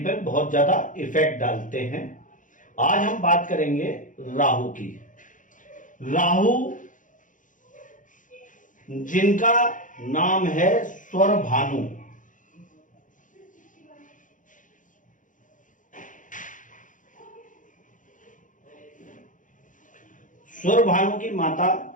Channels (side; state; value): right; late; 0.38 ms